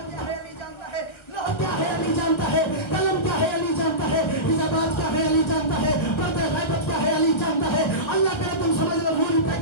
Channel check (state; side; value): late; right; 1.4 ms